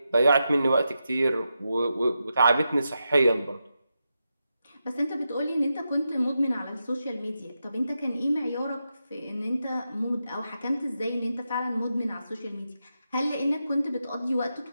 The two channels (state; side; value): inverted; both; correlation -0.88